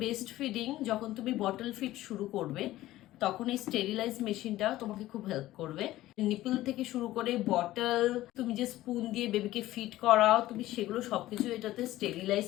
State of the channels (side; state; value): right; quieter; 15.7 dB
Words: বেস্ট ফিডিং, যখন তুমি বটল ফিড শুরু করবে তখন এই স্টেরিলাইজ মেশিনটা তোমাকে খুব হেল্প করবে। নিপল থেকে শুরু করে বটল, তুমি যে স্পুন দিয়ে বেবিকে ফিড করাও, তুমি সেগুলো সবকিছু এটাতে স্টেরিলাইজ